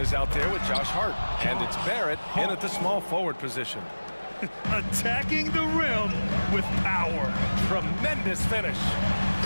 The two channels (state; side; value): inverted; both; correlation -1.00